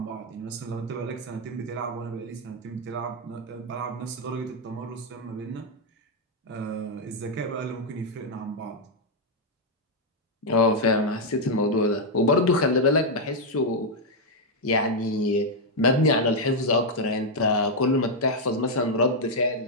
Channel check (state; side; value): normal; both; correlation -0.02